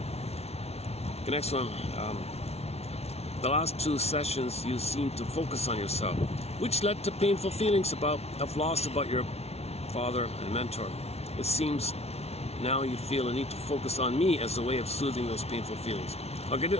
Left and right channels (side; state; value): right; late; 0.31 ms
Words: The next one. The last two sessions, you seem to focus on yourself, which led to painful feelings of loss about your father and mentor. It seems now you feel a need to focus on me as a way of soothing those painful feelings. Okay,